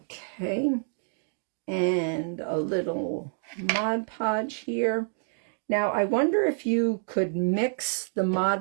and a little Mod Podge here. Now, I wonder if you could mix the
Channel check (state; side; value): silent; left; digital silence